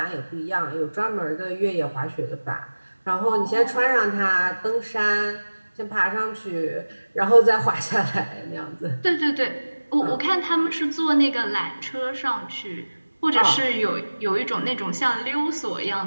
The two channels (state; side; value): inverted; both; correlation -1.00